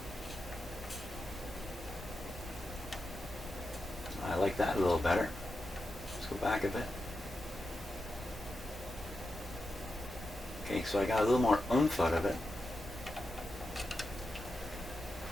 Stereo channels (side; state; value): both; normal; correlation 0.89